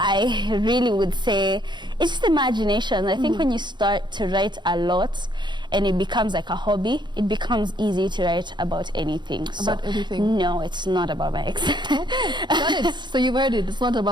really would say it's just imagination. I think when you start to write a lot and it becomes like a hobby, it becomes easy to write about anything. About anything. No, it's not about my ex. Got it. So you've heard it. It's not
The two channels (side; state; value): left; late; 0.22 ms